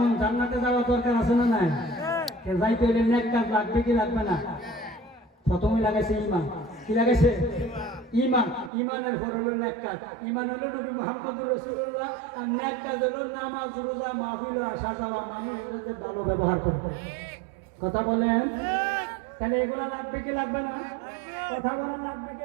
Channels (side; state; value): left; drops out; at 8.7 s